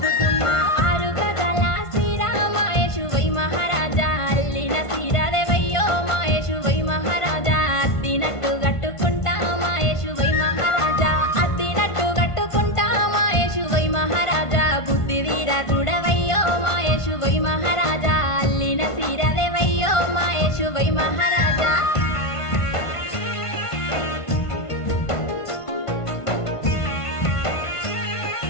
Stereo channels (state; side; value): late; right; 1.5 ms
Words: 6 గజాల శ్రీరామ యేషువై మహారాజా అల్లిన సీరాదేవయ్యో మా యేషువై మహారాజా అద్దినట్టు గట్టుకుంటా మా యేషువై మహారాజా అద్దినట్టు గట్టుకుంటా మా యేషువై మహారాజా బుద్ధి వీరా చూడవయ్యో మా యేషువై మహారాజా అల్లిన సీరాదేవయ్యో మా యేషువై మహారాజా.